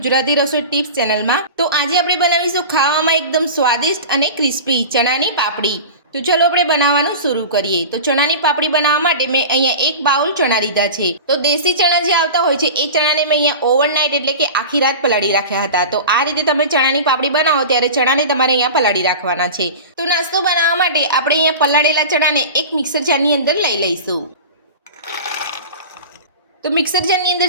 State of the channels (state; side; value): inverted; both; correlation -0.32